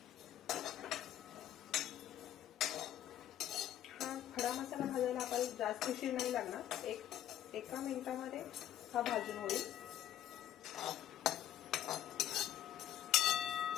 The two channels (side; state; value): right; quieter; 11.6 dB